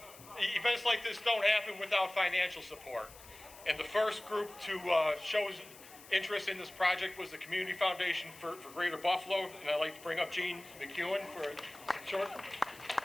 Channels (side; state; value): left; noise; hiss, 19 dB below the sound